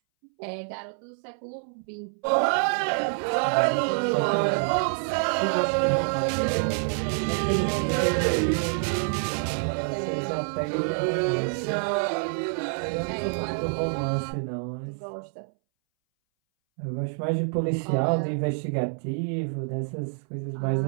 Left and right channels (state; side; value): silent; left; 60 dB below the other